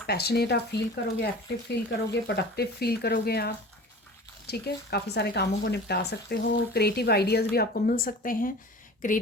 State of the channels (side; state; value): both; normal; correlation 0.39